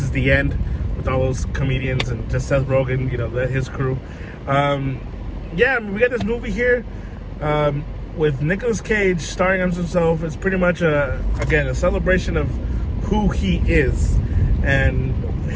the End, with all those comedians and just Seth Rogen, his crew. Yeah, I mean, we got this movie here with Nicolas Cage starring as himself. It's pretty much a celebration of who he is and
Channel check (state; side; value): identical; both; correlation 1.00